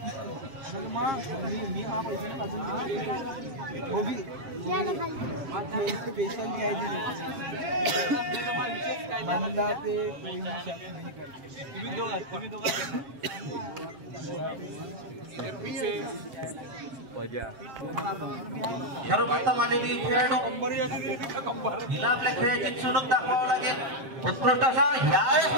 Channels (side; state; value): left; late; 7.2 ms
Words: सर्वप्रथम आलेली खेळाडू हिला आपल्या खेळाची चुणूक दाखवावं लागेल उत्कृष्ट असा यावेळेस